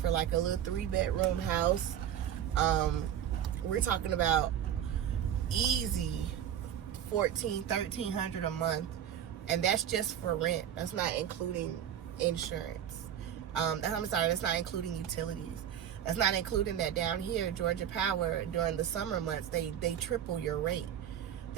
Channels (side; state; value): left; quieter; 9.8 dB